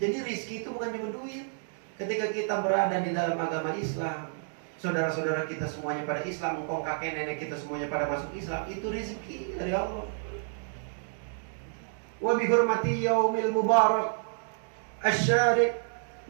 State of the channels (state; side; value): silent; left; digital silence